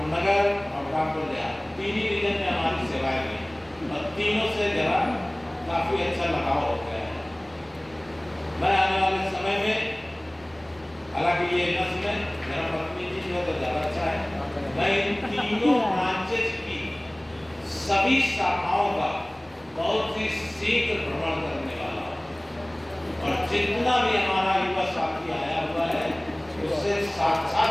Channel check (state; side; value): noise; right; rumble, 28 dB below the sound